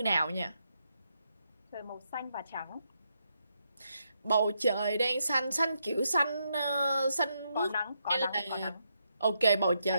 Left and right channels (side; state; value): both; inverted; correlation -0.80